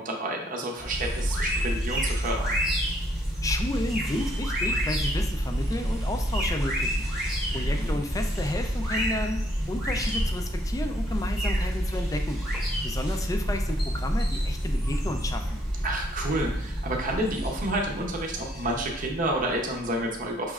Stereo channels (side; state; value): both; normal; correlation 0.68